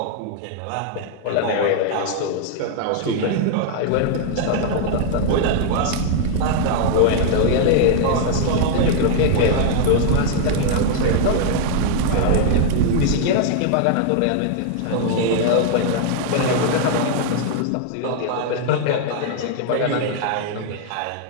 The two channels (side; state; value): both; different; correlation 0.00